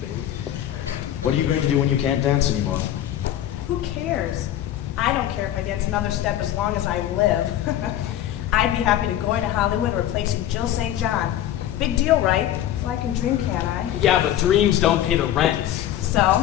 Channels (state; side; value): quieter; right; 12.1 dB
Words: What are you going to do when you can't dance anymore? Who cares? I don't care if I dance another step as long as I live. I'd be happy to go into Hollywood replacing Jill St. John. Big deal, right? So I can dream, can't I? Yeah, but dreams don't pay the rent. So,